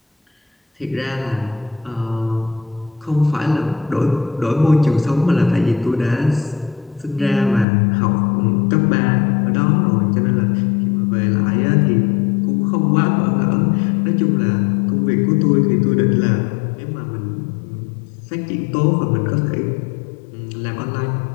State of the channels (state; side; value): drops out; right; at 7.7 s